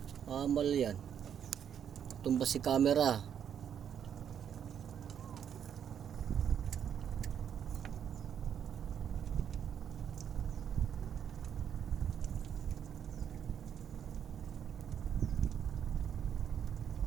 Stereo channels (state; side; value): quieter; left; 8.6 dB